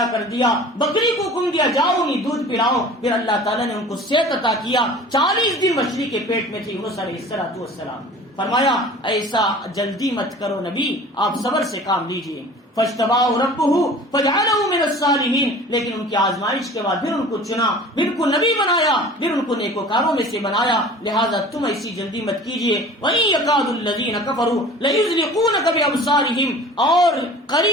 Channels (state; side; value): normal; both; correlation 0.43